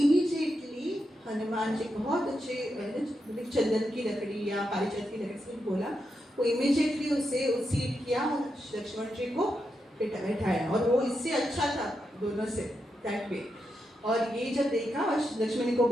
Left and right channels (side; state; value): both; normal; correlation 0.85